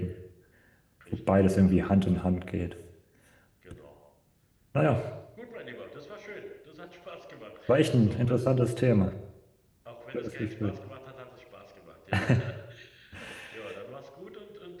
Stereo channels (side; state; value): both; identical; correlation 1.00